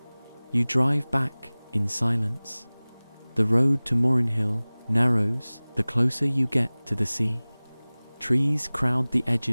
You drive back in silence. The road to Morrenhill narrows the closer you get to the sea. Trees crowd the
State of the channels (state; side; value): inverted; both; correlation -1.00